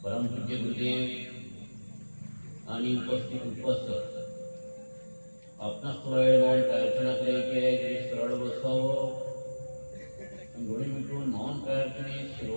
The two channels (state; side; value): inverted; both; correlation -1.00